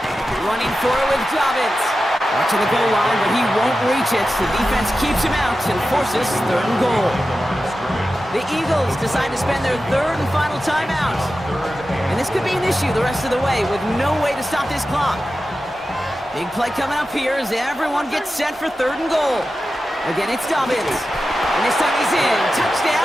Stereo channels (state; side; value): normal; both; correlation 0.92